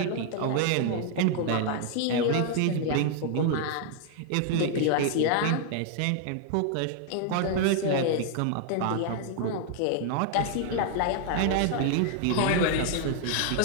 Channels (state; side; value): different; both; correlation 0.00